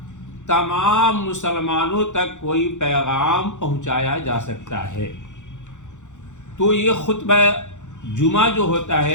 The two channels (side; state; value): right; late; 0.85 ms